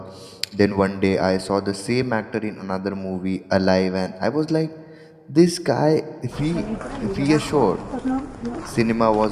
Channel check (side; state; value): both; identical; correlation 1.00